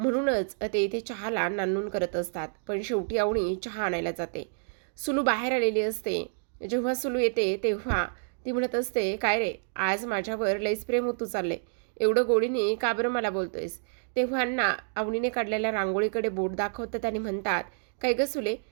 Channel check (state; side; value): silent; left; digital silence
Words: ते इथे चहाला नानून करत असतात. पण शेवटी अवनी चहा आणायला जाते. सुलू बाहेर आलेली असते. जेव्हा सुलू येते तेव्हा ती म्हणत असते, काय रे आज माझ्यावर लईच प्रेम होतू चालले, एवढं गोडीने का बरं मला बोलतोयस? तेव्हा अण्णा अवनीने काढलेल्या रांगोळीकडे बोट दाखवतात आणि म्हणतात, काय ग सुले,